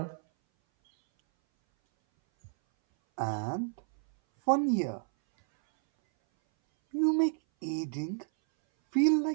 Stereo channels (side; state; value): left; silent; 58 dB below the other